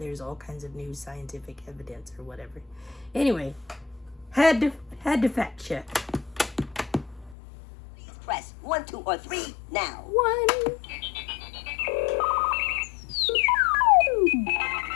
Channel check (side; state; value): right; drops out; at 7.4 s